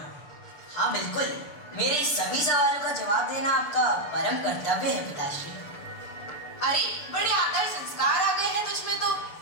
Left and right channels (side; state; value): right; late; 6.8 ms